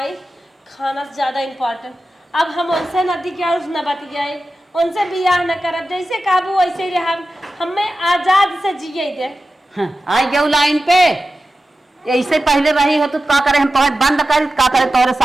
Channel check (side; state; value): both; normal; correlation 0.93